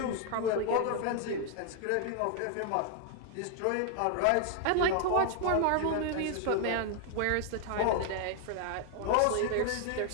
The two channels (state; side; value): different; both; correlation 0.00